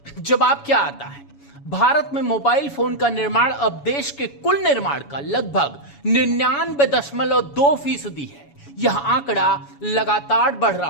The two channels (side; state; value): right; late; 7.1 ms